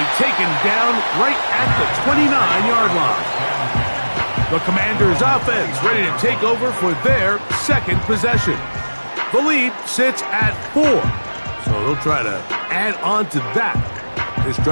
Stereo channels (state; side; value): inverted; both; correlation -1.00